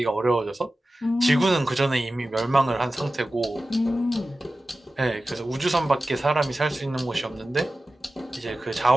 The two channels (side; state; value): both; normal; correlation 0.95